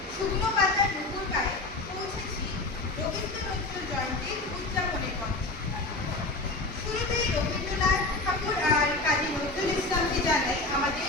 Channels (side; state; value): right; quieter; 3.0 dB